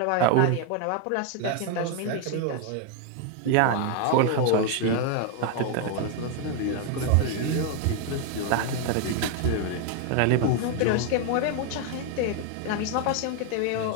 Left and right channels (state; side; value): different; both; correlation 0.01